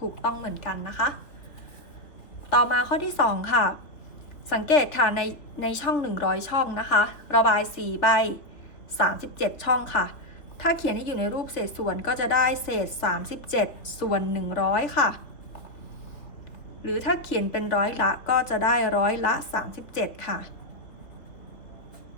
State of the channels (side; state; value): right; late; 3.3 ms